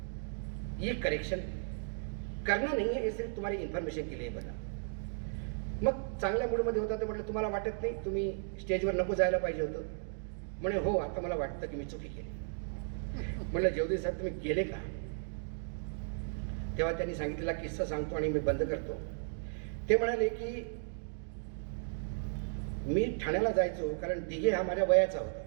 ये करेक्शन करना नहीं है, ये सिर्फ तुम्हारी इन्फॉर्मेशन के लिए बना। मग चांगल्या मूडमध्ये होता तर म्हटलं तुम्हाला वाटत नाही तुम्ही स्टेजवर नको जायला पाहिजे होतं? म्हणे हो, आता मला वाटतं की मी चुकी केली। म्हटलं जयदेव साहेब तुम्ही गेले का? तेव्हा त्यांनी सांगितलेला किस्सा सांगतो आणि मी बंद करतो। ते म्हणाले की मी ठाण्याला जायचो, कारण दिघे हा माझ्या वयाचा होता,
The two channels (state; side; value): silent; left; digital silence